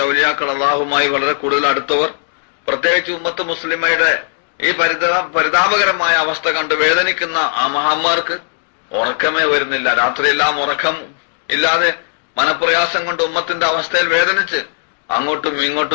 ഔലിയാക്കൾ, അള്ളാഹുമായി വളരെ കൂടുതൽ അടുത്തവർ, പ്രത്യേകിച്ച് ഉമ്മത്ത് മുസ്ലിമയുടെ ഈ പരിതാപകരമായ അവസ്ഥ കണ്ട് വേദനിക്കുന്ന ആ മഹാന്മാർക്ക് ഉറക്കമേ വരുന്നില്ല. രാത്രിയെല്ലാം ഉറക്കം ഇല്ലാതെ മനപ്രയാസം കൊണ്ട് ഉമ്മത്തിന്റെ അവസ്ഥയിൽ വേദനിച്ച് അങ്ങോട്ടും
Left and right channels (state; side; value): silent; right; digital silence